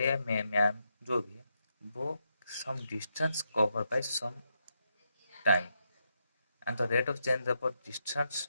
या मैन जो भी है वो some distance covered by some time, and the rate of change of distance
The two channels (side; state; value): both; inverted; correlation -0.82